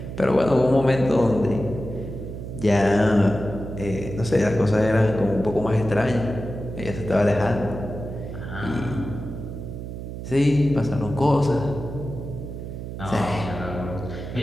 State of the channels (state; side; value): noise; right; hum, 8 dB below the sound